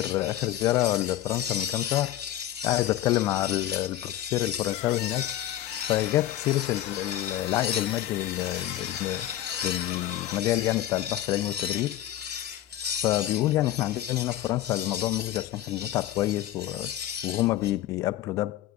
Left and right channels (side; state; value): right; quieter; 13.1 dB